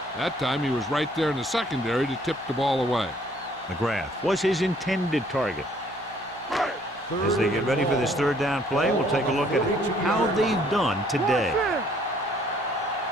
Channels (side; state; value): both; normal; correlation 0.62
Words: That time he was right there in the secondary to tip the ball away. McGrath was his intended target. As they get ready for this third down play, we'll take a look at how they've done today.